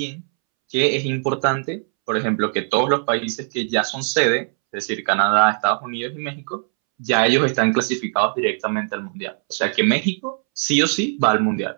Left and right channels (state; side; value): silent; left; 65 dB below the other